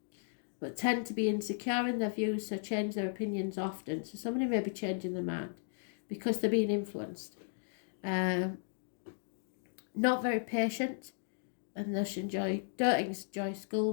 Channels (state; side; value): silent; right; digital silence